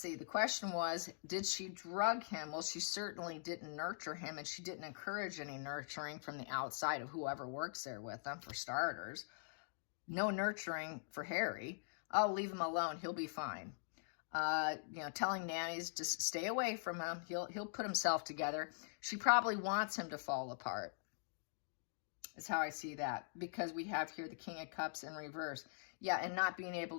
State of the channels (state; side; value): silent; right; digital silence